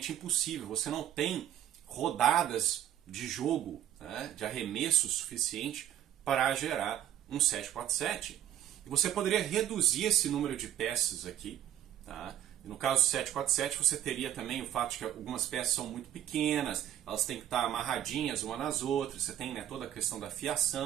impossível. Você não tem rodadas de jogo, né, de arremesso suficiente para gerar um 747. E você poderia reduzir esse número de peças aqui, tá? No caso do 747, você teria também o fato de que algumas peças são muito pequenas, elas têm que estar amarradinhas umas nas outras, você tem, né, toda a questão da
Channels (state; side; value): quieter; left; 11.3 dB